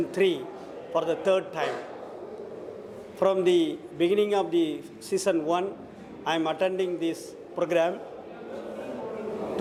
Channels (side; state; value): both; identical; correlation 1.00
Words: 3 for the 3rd time. From the beginning of the Season 1, I am attending this program.